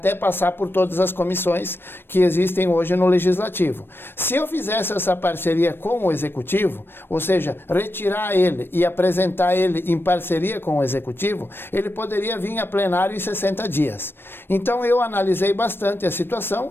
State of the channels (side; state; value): right; late; 0.10 ms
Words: passar por todas as comissões que existem hoje no Legislativo. Se eu fizesse essa parceria com o Executivo, ou seja, retirar ele e apresentar ele em parceria com o Executivo, ele poderia vir a plenário em 60 dias. Então eu analisei bastante a